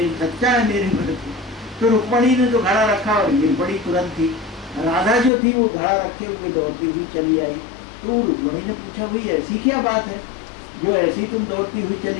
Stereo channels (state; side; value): drops out; right; at 5.3 s